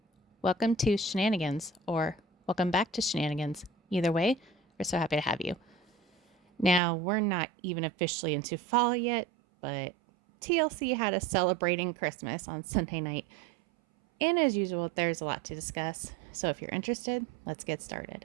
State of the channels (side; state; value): left; drops out; at 6.8 s